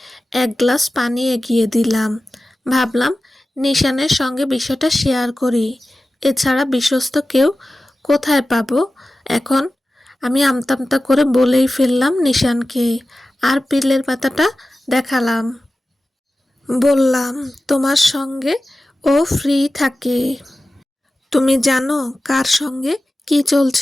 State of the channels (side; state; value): both; normal; correlation 0.95